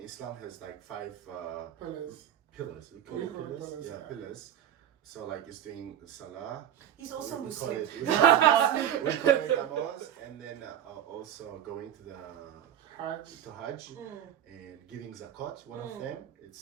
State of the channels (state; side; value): quieter; left; 10.5 dB